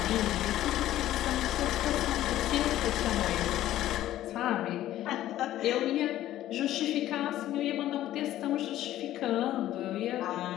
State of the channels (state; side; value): quieter; right; 13.6 dB